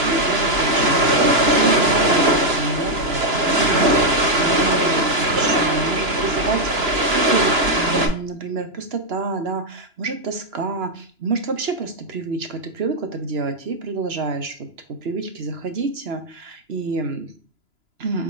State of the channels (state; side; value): late; left; 2.9 ms